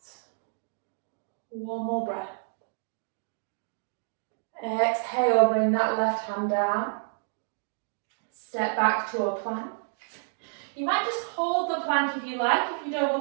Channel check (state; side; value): silent; left; digital silence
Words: 1 more breath. Exhale, bring that left hand down. Step back to a plank. You might just hold the plank if you like, if you don't